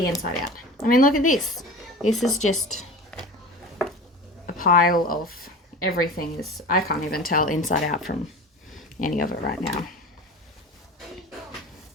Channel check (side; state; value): both; normal; correlation 0.35